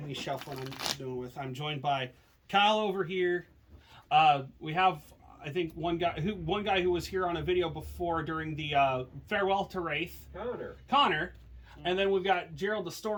me shuffling I'm joined by Kyle over here. We have, I think, one guy who was here on a video before during the Farewell to Wraith. Connor. And then we've got Gerald, the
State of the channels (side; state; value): both; identical; correlation 1.00